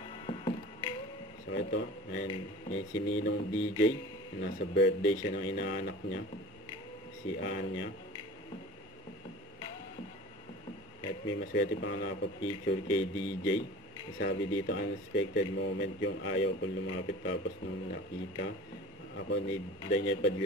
So ito, ayan, si Ninong DJ. Nasa birthday siya ng inaanak niya. Si Anya. At may maswerte pa nga nakapag-picture kay DJ. Sabi dito, unexpected moment yung ayaw ko lumapit, tapos nung nakita ako ni Daniel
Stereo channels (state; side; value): normal; both; correlation 0.40